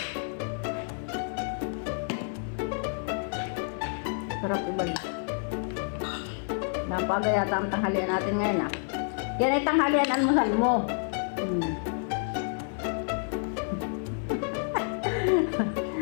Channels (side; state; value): right; silent; 56 dB below the other